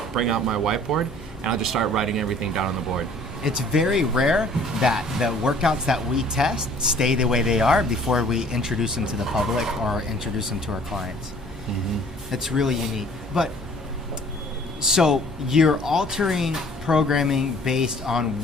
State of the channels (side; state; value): both; normal; correlation 0.54